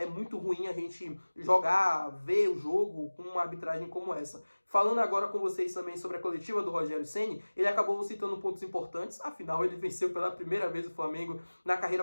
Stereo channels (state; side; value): inverted; both; correlation -1.00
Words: muito ruim a gente ver o jogo com uma arbitragem como essa. Falando agora com vocês também sobre a coletiva do Rogério Ceni, ele acabou citando pontos importantes, afinal ele venceu pela primeira vez o Flamengo na carreira